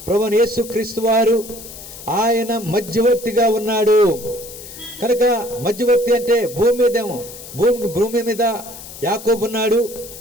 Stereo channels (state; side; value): noise; left; hiss, 14 dB below the sound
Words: ప్రభువైన యేసుక్రీస్తు వారు ఆయన మధ్యవర్తిగా ఉన్నాడు. కనుక మధ్యవర్తి అంటే భూమి మీద యాకోబు ఉన్నాడు,